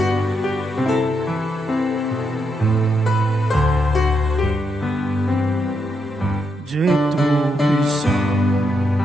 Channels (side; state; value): both; normal; correlation 0.81